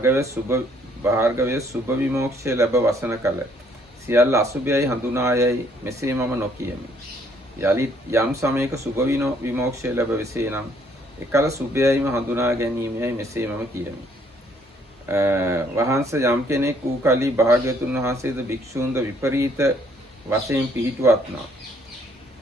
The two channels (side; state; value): both; normal; correlation 0.65